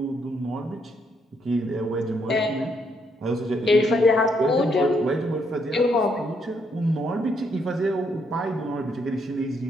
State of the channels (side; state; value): both; normal; correlation 0.74